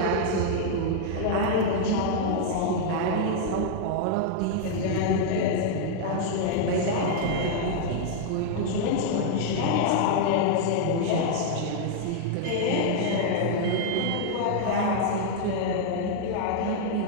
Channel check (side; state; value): both; different; correlation -0.01